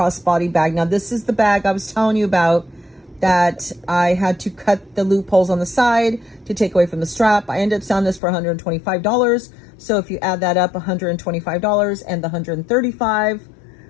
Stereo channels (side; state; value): right; drops out; at 8.2 s